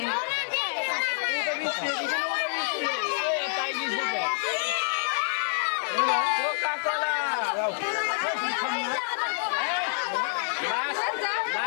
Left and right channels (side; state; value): right; silent; 57 dB below the other